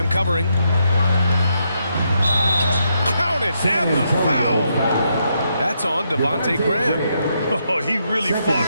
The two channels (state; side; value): inverted; both; correlation -0.79